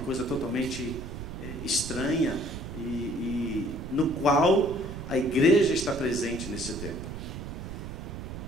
totalmente estranha, e no qual a igreja está presente nesse tempo.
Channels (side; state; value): right; noise; rumble, 8 dB below the sound